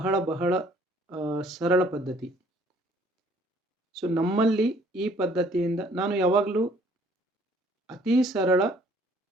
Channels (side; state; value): both; normal; correlation 0.59